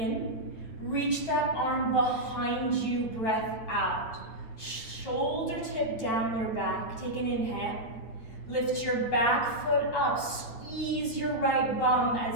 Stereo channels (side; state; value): right; late; 9.3 ms